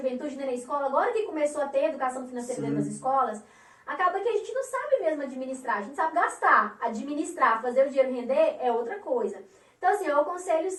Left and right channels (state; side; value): identical; both; correlation 1.00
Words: nem na escola, agora que começou a ter educação financeira dentro das escolas, acaba que a gente não sabe mesmo administrar, a gente sabe gastar, administrar, fazer o dinheiro render é outra coisa. Então, assim, eu aconselho